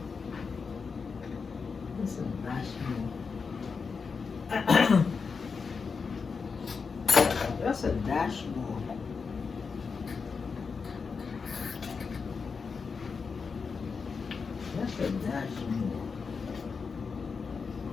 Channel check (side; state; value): right; quieter; 5.2 dB